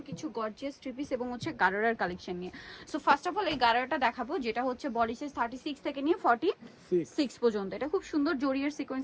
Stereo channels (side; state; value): both; identical; correlation 1.00